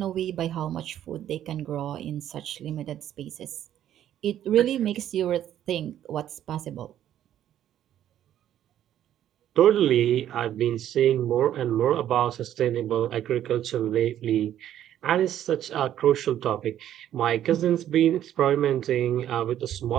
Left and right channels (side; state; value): left; quieter; 11.3 dB